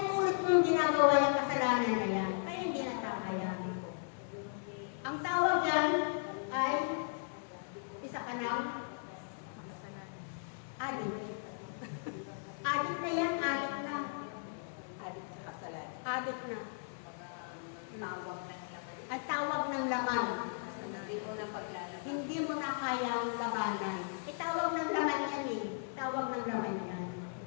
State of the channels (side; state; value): right; silent; 53 dB below the other